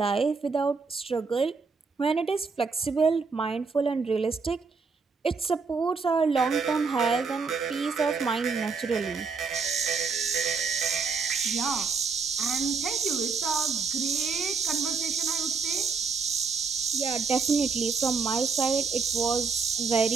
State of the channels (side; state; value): left; quieter; 5.0 dB